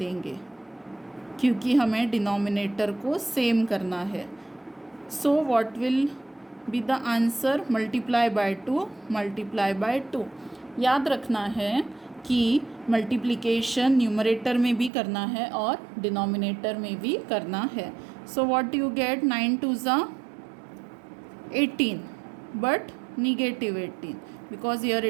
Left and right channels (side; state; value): left; drops out; at 14.9 s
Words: क्योंकि हमें डिनोमिनेटर को सेम करना है. So what will be the answer? Multiply by 2, multiply by 2. याद रखना है कि मल्टीप्लिकेशन न्यूमरेटर में भी करना है और डिनोमिनेटर में भी करना है. So what you get? 9 2 ज़ा 18 but negative 18 because here